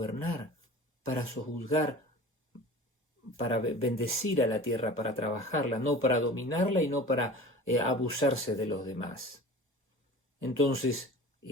para sojuzgar, para bendecir a la tierra, para trabajarla, no para dominarla y no para abusarse de los demás. Entonces,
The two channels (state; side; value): normal; both; correlation 0.39